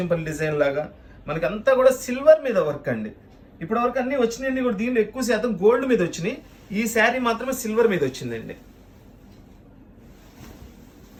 డిజైన్ లాగా. మనకి అంతా కూడా సిల్వర్ మీద వర్క్ అండి. ఇప్పటి వరకు అన్ని వచ్చినాయండి కూడా. దీనిలో ఎక్కువ శాతం గోల్డ్ మీద వచ్చినాయి. ఈ శారీ మాత్రమే సిల్వర్ మీద వచ్చిందండి.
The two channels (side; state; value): both; identical; correlation 1.00